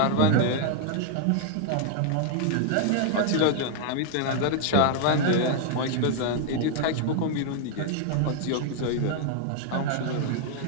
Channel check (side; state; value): both; different; correlation 0.00